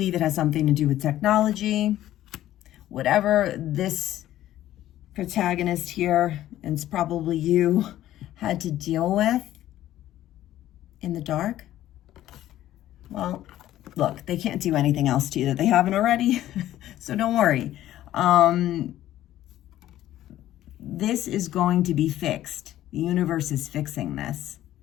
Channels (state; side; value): quieter; right; 13.5 dB